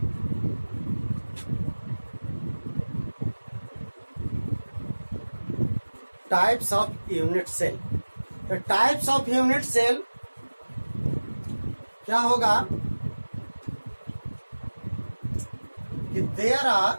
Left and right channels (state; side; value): inverted; both; correlation -1.00